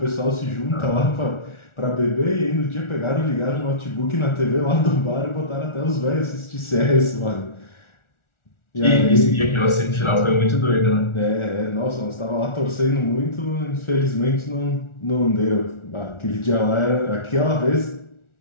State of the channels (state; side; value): late; right; 1.4 ms